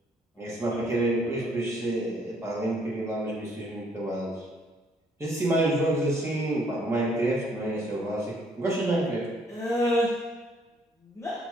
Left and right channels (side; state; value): both; normal; correlation 0.66